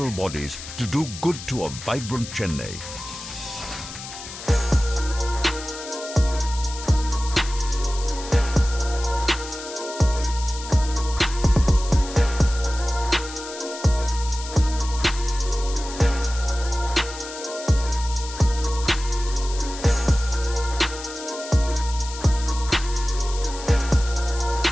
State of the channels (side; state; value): left; noise; hiss, 12 dB below the sound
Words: bodies to do good to a vibrant Chennai.